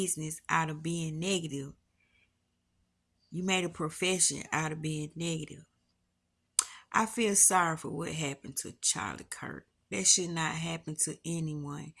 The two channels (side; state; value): both; identical; correlation 1.00